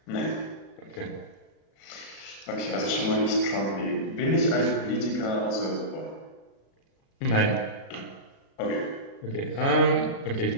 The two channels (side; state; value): right; late; 36 ms